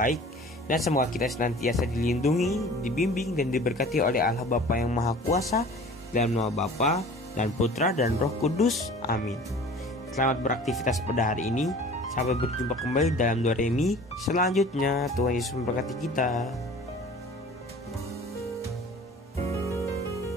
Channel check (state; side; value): normal; both; correlation 0.45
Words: dan semoga kita senantiasa dilindungi, dibimbing, dan diberkati oleh Allah Bapa yang Maha Kuasa, dalam nama Bapa dan Putra dan Roh Kudus. Amin. Selamat beraktivitas pada hari ini. Sampai berjumpa kembali dalam Do Re Mi selanjutnya. Tuhan Yesus memberkati kita.